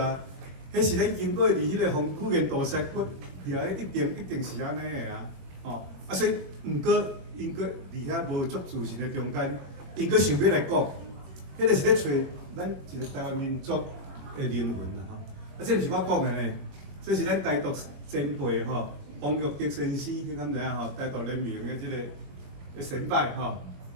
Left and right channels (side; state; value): left; late; 22 ms